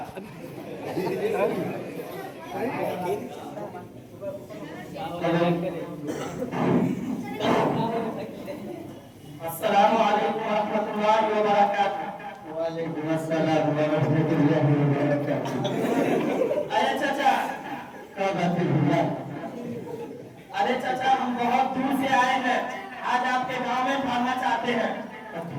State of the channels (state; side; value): identical; both; correlation 1.00